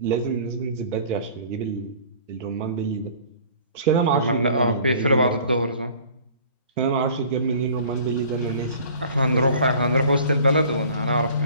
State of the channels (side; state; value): both; inverted; correlation -0.48